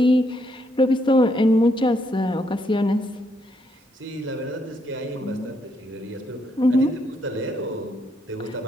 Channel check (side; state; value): both; normal; correlation 0.75